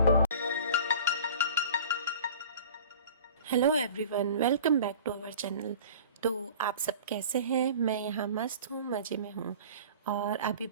Hello everyone, welcome back to our channel. तो आप सब कैसे हैं? मैं यहाँ मस्त हूँ, मज़े में हूँ। और अभी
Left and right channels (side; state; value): both; inverted; correlation -0.42